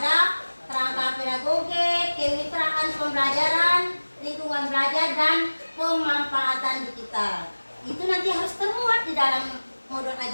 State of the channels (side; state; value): both; inverted; correlation -1.00